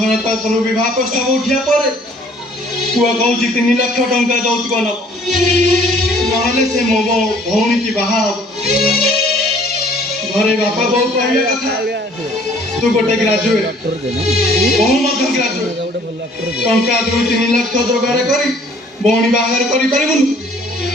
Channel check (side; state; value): both; normal; correlation 0.57